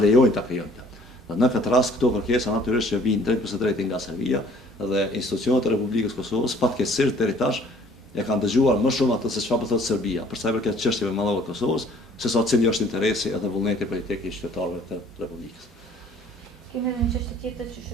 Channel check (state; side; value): normal; both; correlation 0.55